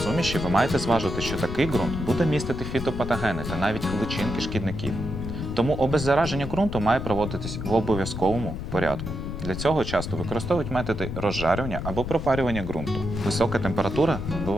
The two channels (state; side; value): noise; left; rumble, 6 dB below the sound